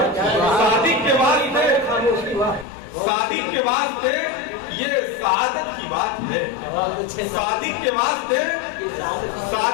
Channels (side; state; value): right; drops out; at 2.7 s